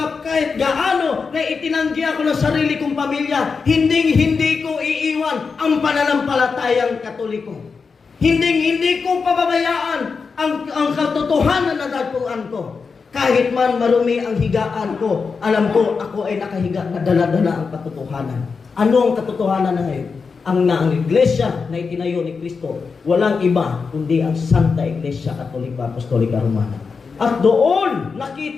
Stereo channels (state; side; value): quieter; right; 5.1 dB